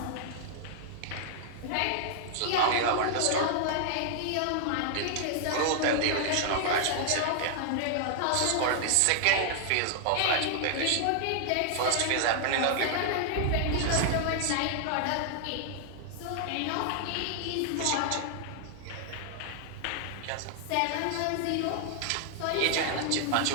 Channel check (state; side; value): different; both; correlation 0.00